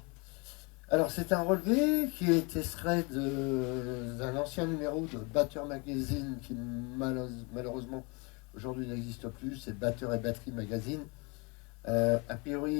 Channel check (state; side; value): quieter; right; 30.2 dB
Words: Alors, c'est un relevé qui est extrait d'un ancien numéro de Batter Magazine qui malheureusement aujourd'hui n'existe plus, c'est Batter et Batterie Magazine. A